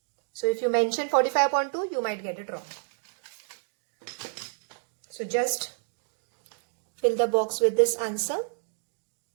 So if you mention 45 upon 2, you might get it wrong. So just fill the box with this answer.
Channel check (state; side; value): silent; left; digital silence